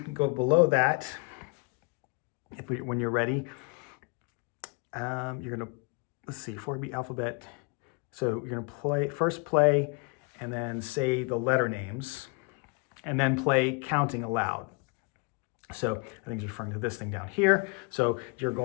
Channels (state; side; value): quieter; right; 32.0 dB